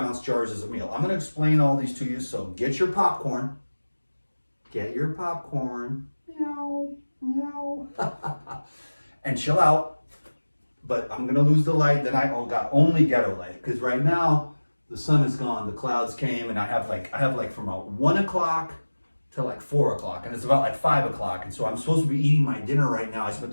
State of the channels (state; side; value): inverted; both; correlation -1.00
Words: jars is a meal. I'm going to explain all these to you. So get your popcorn. Get your popcorn. Meow, meow. And chill out. But I'm going to lose the light. Then I got only ghetto light because right now, the sun is gone, the clouds came, and I have like from about 1 o'clock to like 4 o'clock, and it's about like 5 o'clock, and so I'm supposed to be eating my dinner right now. I spent